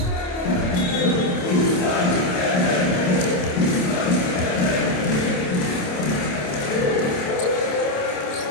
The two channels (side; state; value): right; late; 27 ms